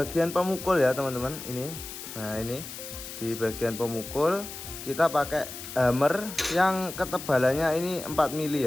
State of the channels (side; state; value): left; noise; hiss, 11 dB below the sound